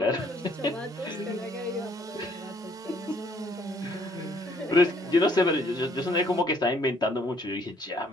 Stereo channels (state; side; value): normal; both; correlation 0.64